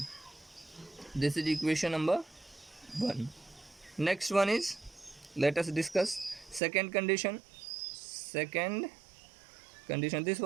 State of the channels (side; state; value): left; drops out; at 6.6 s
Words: this is equation number 1. Next one is, let us discuss second condition. This